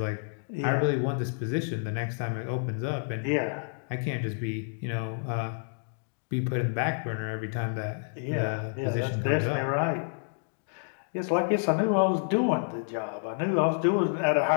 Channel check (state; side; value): silent; right; 58 dB below the other